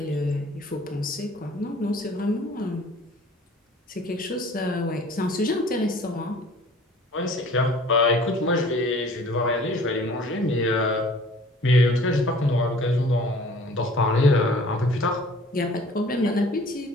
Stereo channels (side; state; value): both; normal; correlation 0.50